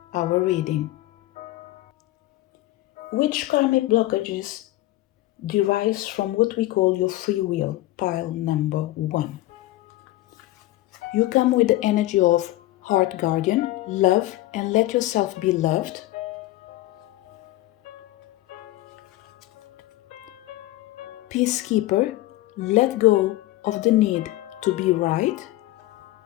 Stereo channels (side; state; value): right; quieter; 16.9 dB